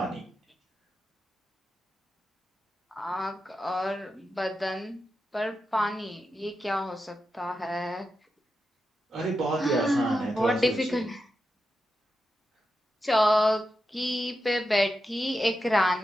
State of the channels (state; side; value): normal; both; correlation 0.89